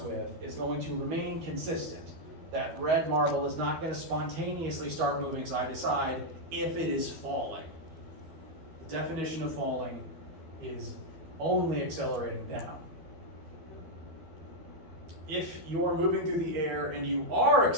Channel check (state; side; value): late; left; 12 ms